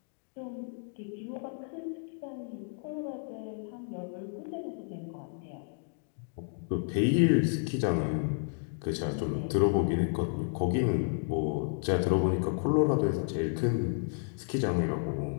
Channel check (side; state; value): right; silent; 57 dB below the other